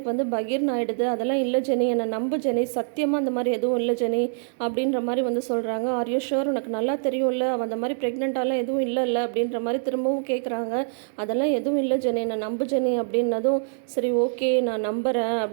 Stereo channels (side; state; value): left; silent; digital silence